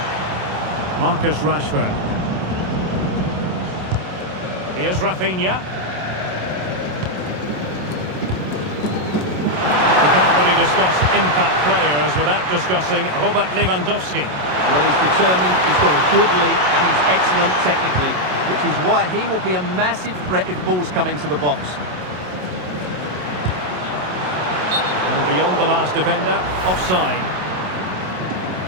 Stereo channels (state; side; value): late; left; 27 ms